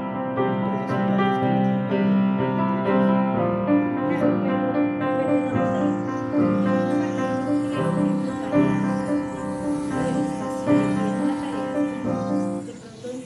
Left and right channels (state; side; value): identical; both; correlation 1.00